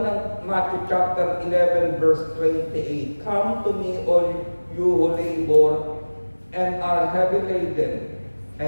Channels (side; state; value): both; inverted; correlation -1.00